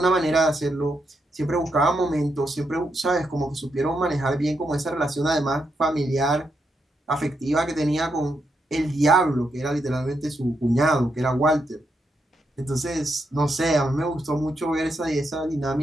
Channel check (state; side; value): normal; both; correlation 0.82